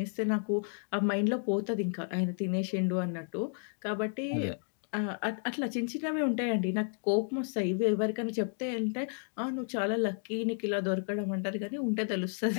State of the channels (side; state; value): right; silent; 56 dB below the other